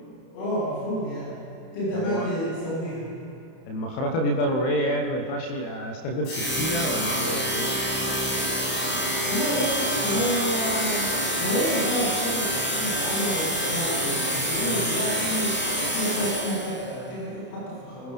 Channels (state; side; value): late; right; 31 ms